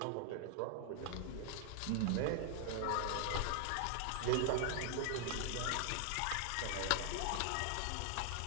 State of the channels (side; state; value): both; different; correlation 0.00